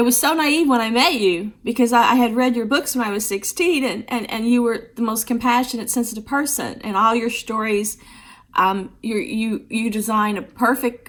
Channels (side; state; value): both; identical; correlation 1.00